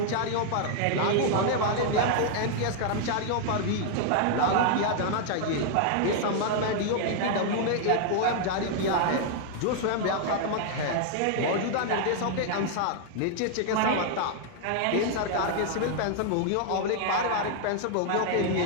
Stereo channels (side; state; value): both; different; correlation 0.00